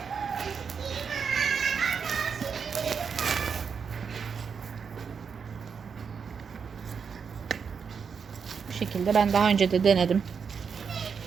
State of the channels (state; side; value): quieter; left; 6.2 dB